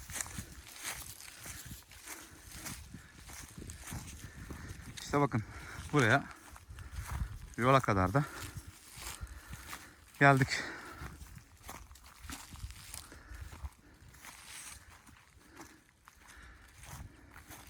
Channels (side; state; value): both; identical; correlation 1.00